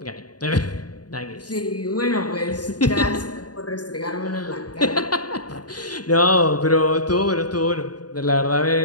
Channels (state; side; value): late; right; 0.69 ms